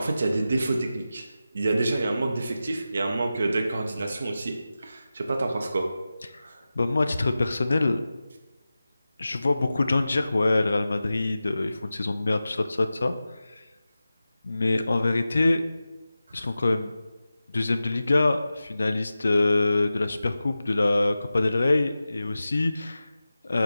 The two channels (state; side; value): inverted; both; correlation -0.94